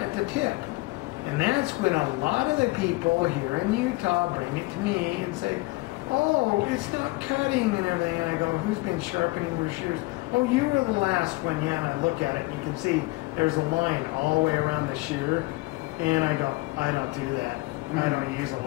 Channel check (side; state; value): right; quieter; 23.0 dB